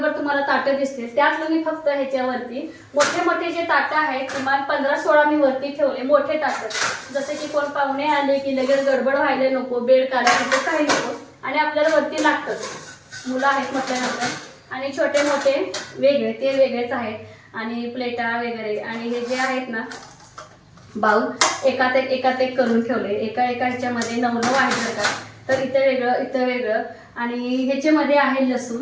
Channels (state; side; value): identical; both; correlation 1.00